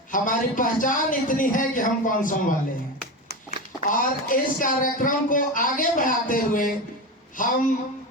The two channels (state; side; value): normal; both; correlation 0.22